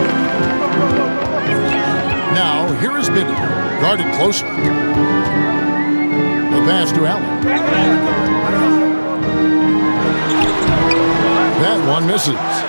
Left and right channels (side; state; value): both; inverted; correlation -1.00